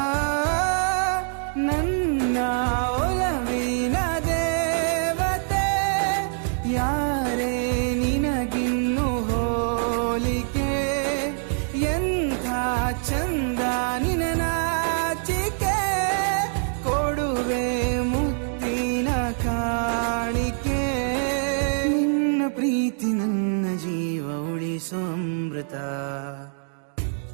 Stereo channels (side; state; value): left; silent; 62 dB below the other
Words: ನನ್ನ ಒಲವಿನ ದೇವತೆ ಯಾರೇ ನಿನಗಿನ್ನು ಹೋಲಿಕೆ ಎಂಥ ಚಂದ ನಿನ ನಾಚಿಕೆ ಕೊಡುವೆ ಮುತ್ತಿನ ಕಾಣಿಕೆ ನಿನ್ನ ಪ್ರೀತಿ ನನ್ನ ಜೀವ ಉಳಿಸೋ ಅಮೃತ